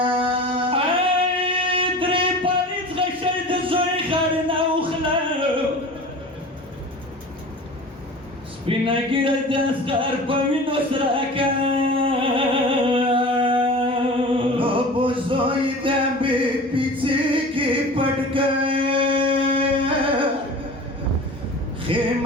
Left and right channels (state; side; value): normal; both; correlation 0.38